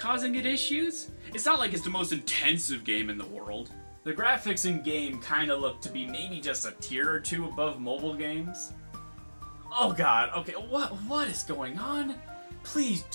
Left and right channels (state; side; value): inverted; both; correlation -1.00